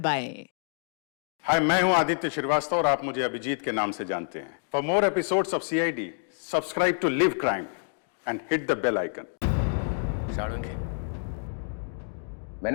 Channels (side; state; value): right; silent; digital silence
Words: हाय, मैं हूं आदित्य श्रीवास्तव और आप मुझे अभिजीत के नाम से जानते हैं। For more episodes of CID, subscribe to live crime and hit the bell icon. Salunkhe,